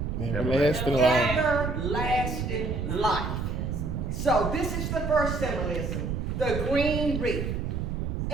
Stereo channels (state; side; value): noise; right; rumble, 2 dB below the sound